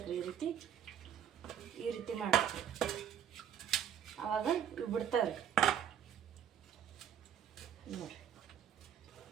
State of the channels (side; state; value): left; quieter; 9.2 dB